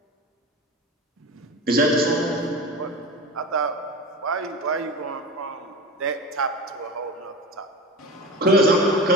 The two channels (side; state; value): both; normal; correlation 0.30